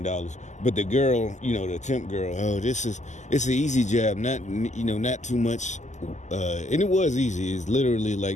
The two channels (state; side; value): late; right; 0.34 ms